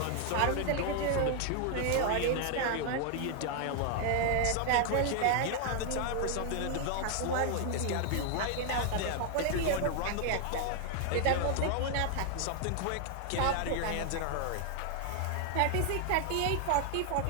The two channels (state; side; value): different; both; correlation 0.00